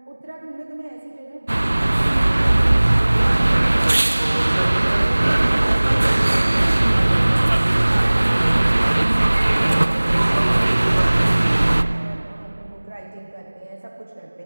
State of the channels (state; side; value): inverted; both; correlation -1.00